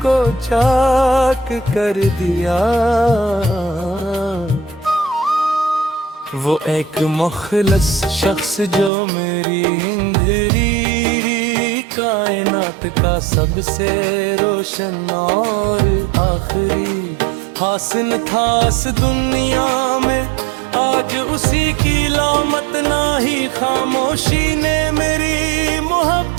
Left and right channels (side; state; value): left; drops out; at 8.9 s